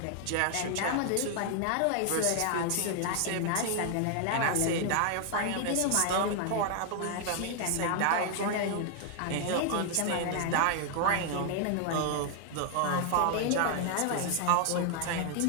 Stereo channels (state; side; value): different; both; correlation 0.00